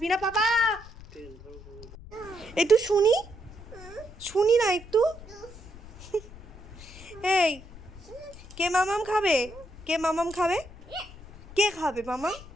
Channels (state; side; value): noise; left; rumble, 18 dB below the sound